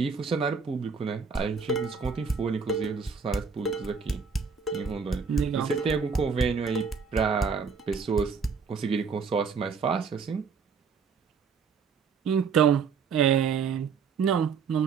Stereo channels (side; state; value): left; quieter; 5.7 dB